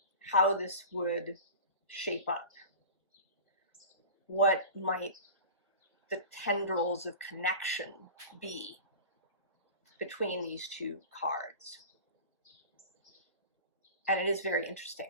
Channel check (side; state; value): both; inverted; correlation -0.34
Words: how this would shape up. What might the tendrils of connection be between these two cards. And it is very